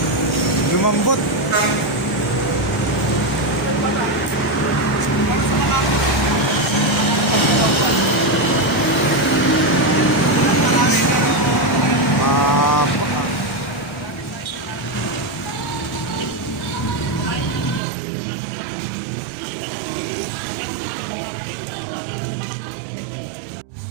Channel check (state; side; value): drops out; left; at 17.8 s